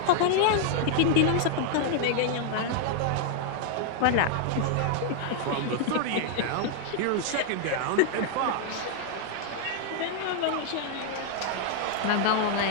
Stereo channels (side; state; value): both; different; correlation 0.00